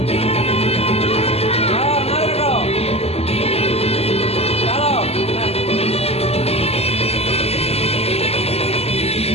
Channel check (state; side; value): late; right; 0.29 ms